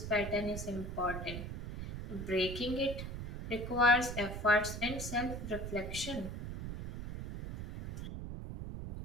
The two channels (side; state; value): right; noise; rumble, 6 dB below the sound